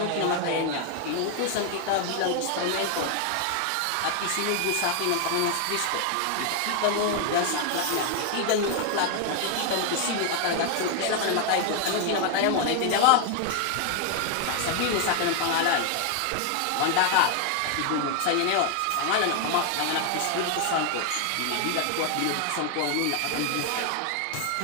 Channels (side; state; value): both; different; correlation 0.01